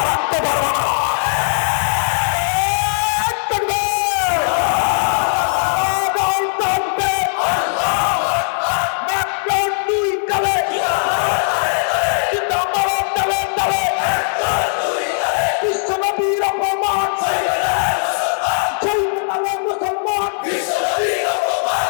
রাখতে পারবে না।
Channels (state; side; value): silent; right; digital silence